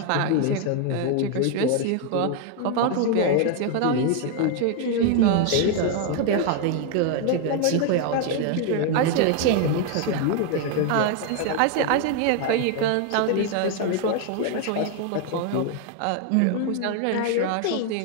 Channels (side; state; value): both; different; correlation 0.01